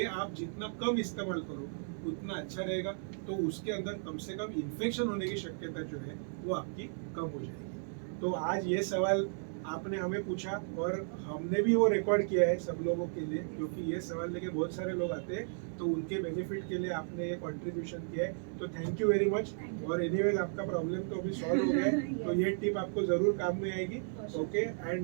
आप जितना कम इस्तेमाल करो उतना अच्छा रहेगा। तो उसके अंदर कम से कम इन्फेक्शन होने की शक्यता जो है वो आपकी कम हो जाएगी। तो आज ये सवाल आपने हमें पूछा और हमने भी वो रिकॉर्ड किया है सब लोगों के लिए क्योंकि ये सवाल लेके बहुत सारे लोग आते हैं तो उनके बेनिफिट के लिए आपने ये कंट्रीब्यूशन किया है तो थैंक यू वेरी मच। और एनीवेज आपका प्रॉब्लम तो अभी सॉल्व हो गया है तो ये टिप आपको जरूर काम में आएगी। Okay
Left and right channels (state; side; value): silent; left; 55 dB below the other